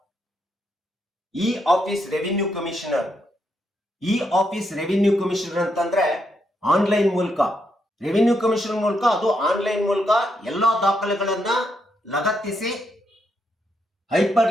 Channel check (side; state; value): both; normal; correlation 0.79